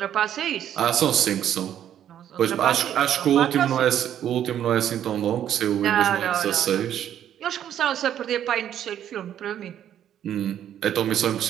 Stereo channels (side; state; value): left; quieter; 10.4 dB